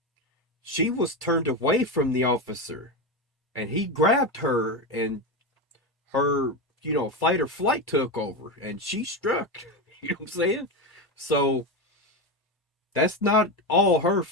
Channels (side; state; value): both; normal; correlation 0.15